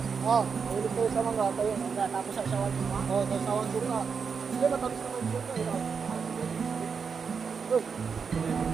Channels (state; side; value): quieter; left; 5.9 dB